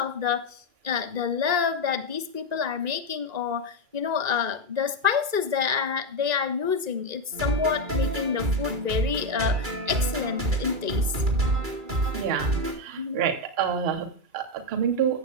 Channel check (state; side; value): late; left; 1.9 ms